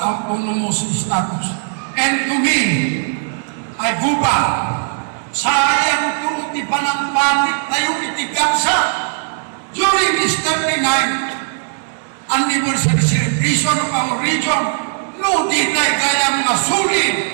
status. And to me, I go back, sayang to di panangpatik tayo itigamsa during this 39th anniversary celebration of our region. No di tayo kayang masulit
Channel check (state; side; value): silent; left; 56 dB below the other